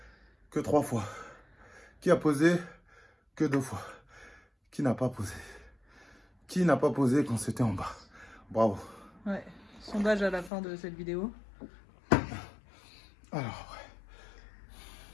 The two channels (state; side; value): drops out; right; at 10.5 s